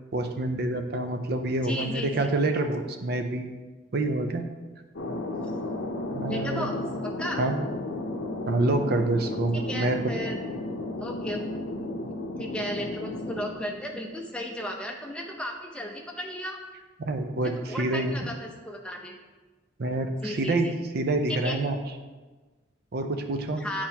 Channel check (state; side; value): normal; both; correlation 0.46